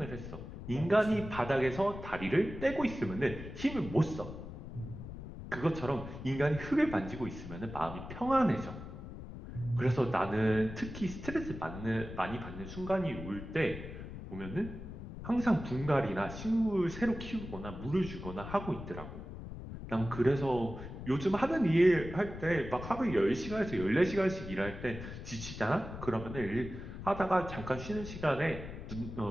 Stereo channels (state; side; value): noise; left; rumble, 10 dB below the sound